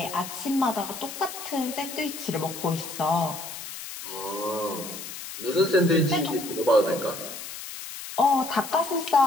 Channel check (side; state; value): left; noise; hiss, 10 dB below the sound